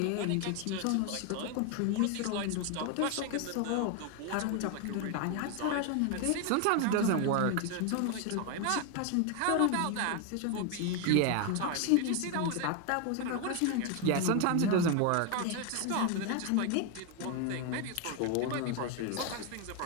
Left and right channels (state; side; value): different; both; correlation 0.01